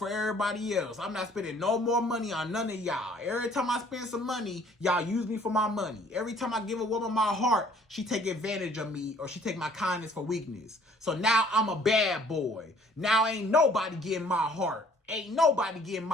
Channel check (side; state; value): both; normal; correlation 0.57